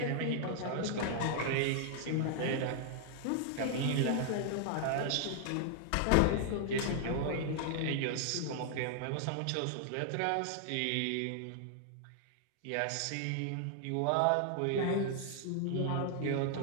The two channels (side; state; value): both; different; correlation 0.00